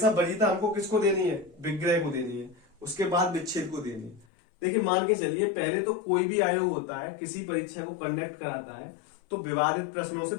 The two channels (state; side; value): drops out; right; at 4.2 s